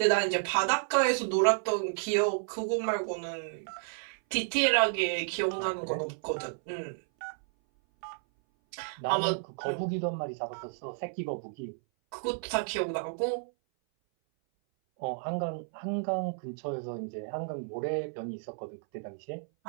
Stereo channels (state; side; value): silent; left; 57 dB below the other